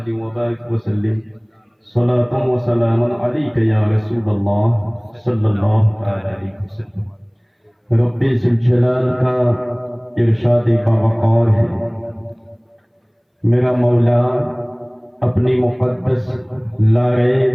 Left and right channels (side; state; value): both; identical; correlation 1.00